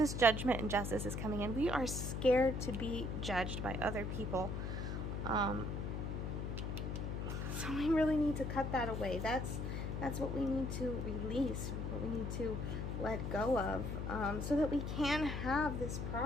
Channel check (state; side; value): noise; left; hum, 3 dB below the sound